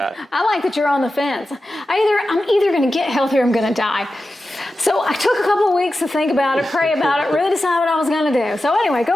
I like that you're on the fence. I'm either going to get healthy or I'm going to die. So I took a couple of weeks to think about it, pray about it, really decide what I was going to do. So anyway, go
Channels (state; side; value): normal; both; correlation 0.93